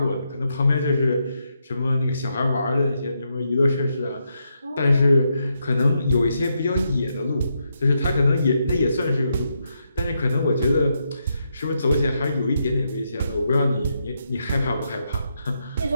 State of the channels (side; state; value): both; inverted; correlation -0.81